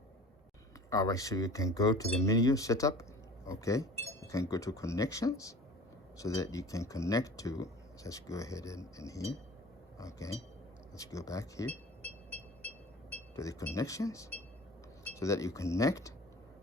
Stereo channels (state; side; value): normal; both; correlation 0.42